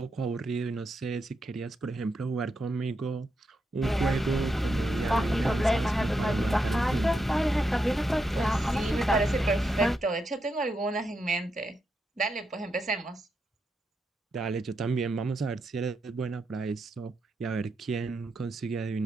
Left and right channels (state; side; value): normal; both; correlation 0.84